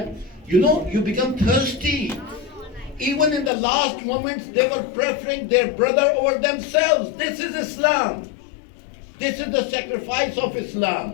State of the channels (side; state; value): right; drops out; at 3.5 s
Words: you become thirsty. Even in the last moments, they were preferring their brother over themselves. This is Islam. This is the sacrifice of